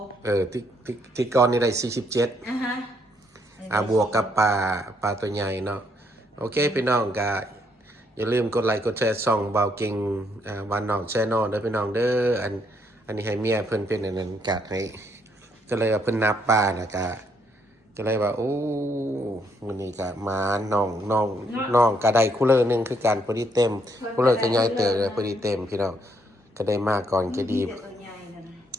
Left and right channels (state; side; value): normal; both; correlation 0.72